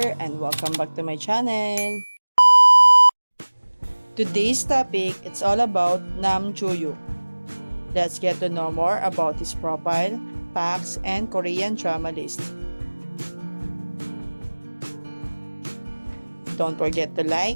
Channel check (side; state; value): both; inverted; correlation -1.00